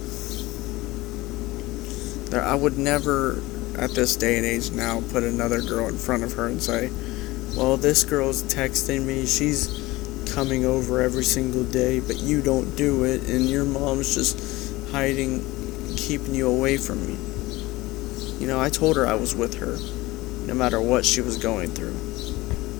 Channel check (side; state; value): right; quieter; 19.9 dB